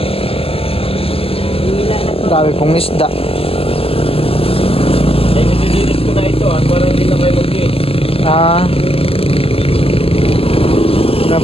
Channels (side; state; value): right; late; 0.28 ms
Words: Dami pong isda. Ay, nililinis ko na ito para hindi na kayo mag-iit. Na